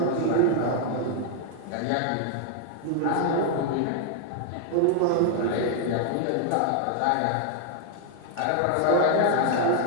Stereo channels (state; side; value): different; both; correlation 0.00